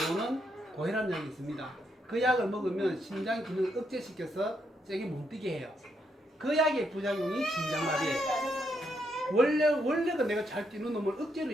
고혈압 약이 있습니다. 그 약을 먹으면 심장 기능을 억제시켜서 세게 못 뛰게 해요. 그 약의 부작용이 심장마비예요. 원래가 내가 잘 뛰는 놈을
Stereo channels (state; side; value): normal; both; correlation 0.78